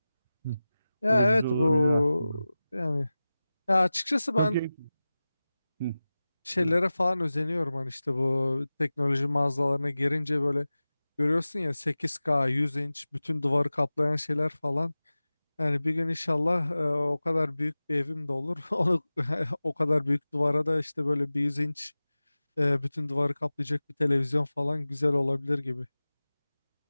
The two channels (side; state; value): both; inverted; correlation -0.97